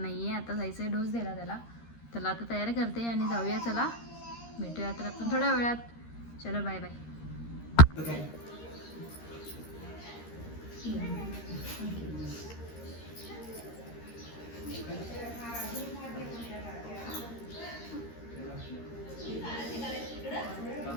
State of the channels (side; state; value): right; late; 13 ms